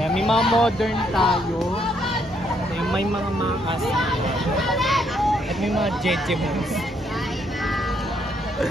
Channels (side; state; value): both; normal; correlation 0.72